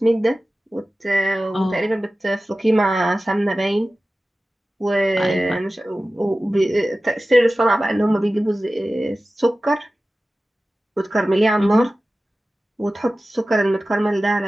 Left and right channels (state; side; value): normal; both; correlation 0.96